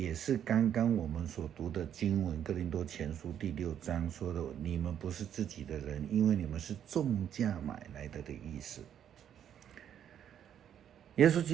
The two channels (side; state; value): left; quieter; 9.5 dB